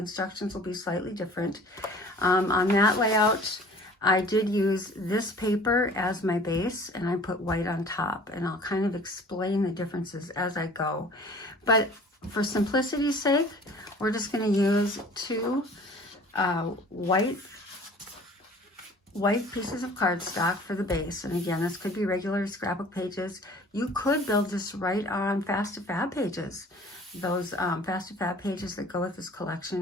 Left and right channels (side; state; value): both; normal; correlation 0.48